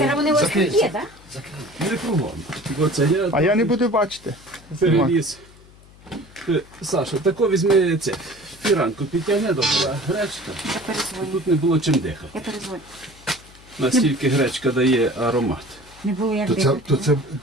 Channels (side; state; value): left; noise; hum, 24 dB below the sound